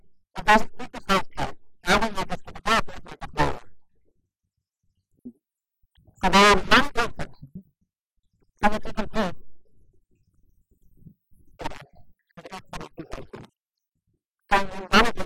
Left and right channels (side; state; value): both; identical; correlation 1.00